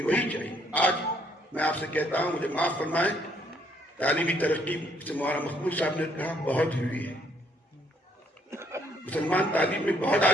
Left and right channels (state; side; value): normal; both; correlation 0.68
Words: وہی چاہیے. آج میں آپ سے کہتا ہوں, مجھے معاف فرمائیں, تعلیمی ترقی سے مولانا مقبول صاحب نے کہا بہت ہوئی ہے. مسلمان تعلیم میں بہت